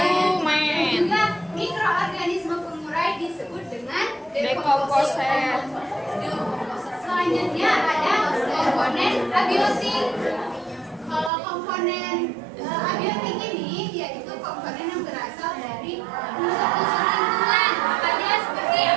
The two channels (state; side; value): drops out; left; at 11.3 s